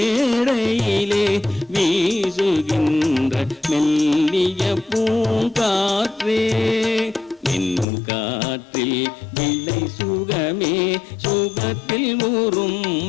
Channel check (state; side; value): drops out; right; at 7.9 s